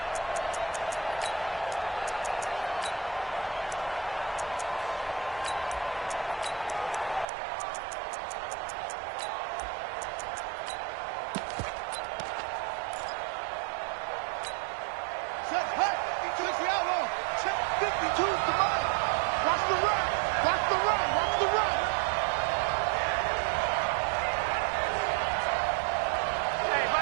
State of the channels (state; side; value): drops out; left; at 7.2 s